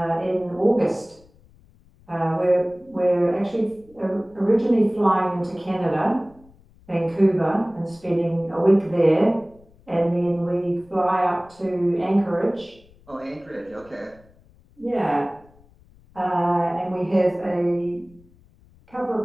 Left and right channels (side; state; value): left; noise; rumble, 28 dB below the sound